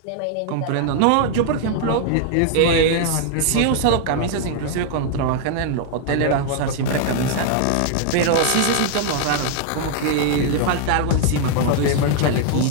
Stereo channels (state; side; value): different; both; correlation 0.00